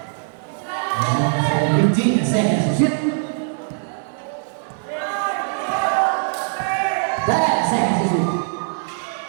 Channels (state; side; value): silent; left; 58 dB below the other